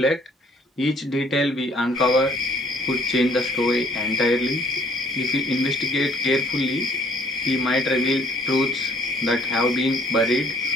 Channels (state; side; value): normal; both; correlation 0.59